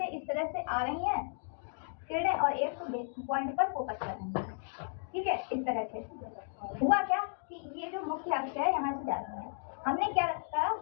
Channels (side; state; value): right; silent; digital silence